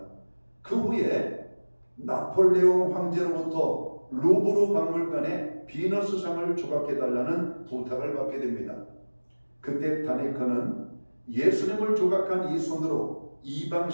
그 후에 나폴레옹 황제로부터 루브르 박물관에 비너스상을 조각해달라는 부탁을 받게 됩니다. 그때 다네크는 예수님을 조각한 이 손으로 이방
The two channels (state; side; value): inverted; both; correlation -1.00